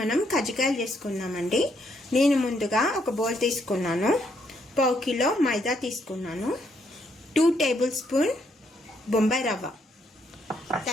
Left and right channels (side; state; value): both; normal; correlation 0.73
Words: కజ్జికాయలు చేసుకున్నామండి. నేను ముందుగా ఒక బౌల్ తీసుకున్నాను, పావు కిలో మైదా తీసుకున్నాను, 2 టేబుల్ స్పూన్ బొంబాయి రవ్వ,